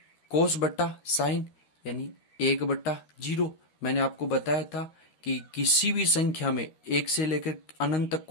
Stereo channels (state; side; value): late; right; 13 ms